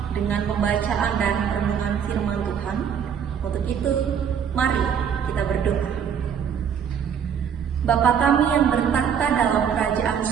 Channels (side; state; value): left; quieter; 7.8 dB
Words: dengan pembacaan dan renungan firman Tuhan. Untuk itu, mari kita berdoa. Bapa kami yang bertahta dalam kerajaan